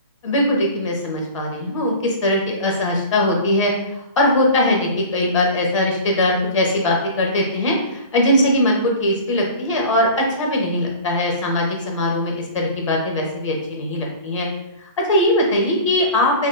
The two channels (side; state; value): both; inverted; correlation -0.37